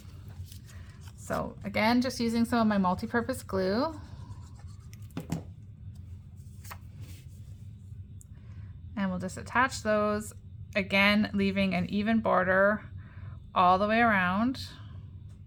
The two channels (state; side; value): identical; both; correlation 1.00